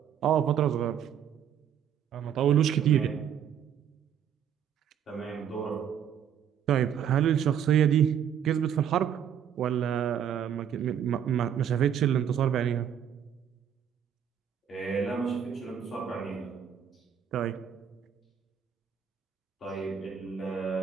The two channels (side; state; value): left; quieter; 8.8 dB